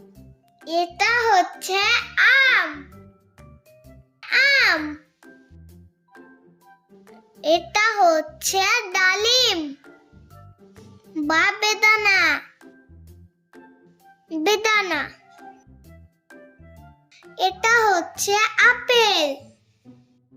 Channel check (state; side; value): identical; both; correlation 1.00